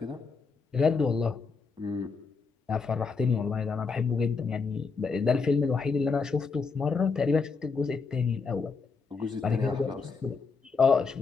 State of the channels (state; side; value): quieter; right; 4.9 dB